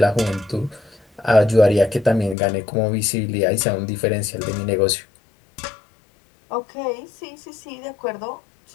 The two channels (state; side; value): drops out; right; at 2.4 s